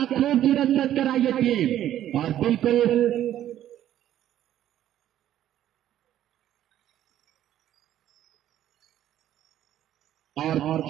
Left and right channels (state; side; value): quieter; left; 11.9 dB